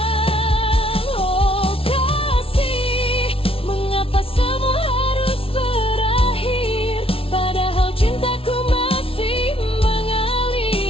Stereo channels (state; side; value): late; right; 0.26 ms